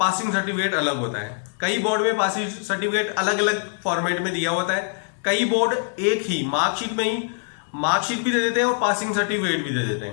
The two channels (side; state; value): right; silent; 56 dB below the other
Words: सर्टिफिकेट अलग होता है। कई बोर्ड में पासिंग सर्टिफिकेट अलग अलग फॉर्मेट में दिया होता है, कई बोर्ड एक ही मार्कशीट में ही मार्कशीट भी दे देते हैं और पासिंग सर्टिफिकेट भी दे देते